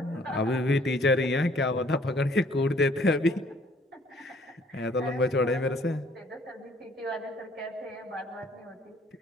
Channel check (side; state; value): both; normal; correlation 0.60